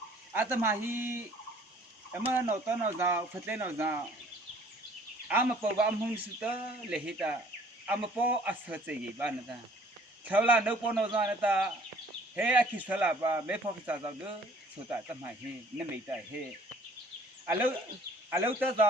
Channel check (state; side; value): normal; both; correlation 0.55